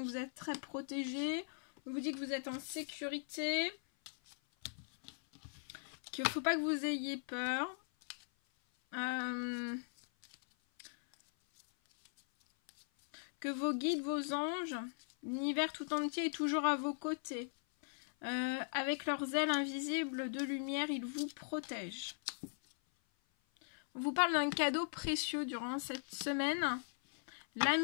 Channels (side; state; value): right; silent; 52 dB below the other